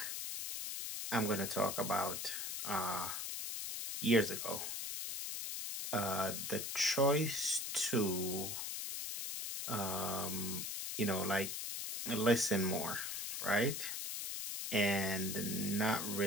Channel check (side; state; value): left; noise; hiss, 4 dB below the sound